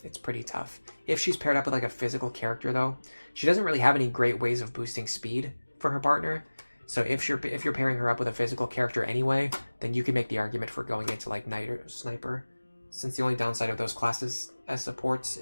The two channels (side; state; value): both; inverted; correlation -1.00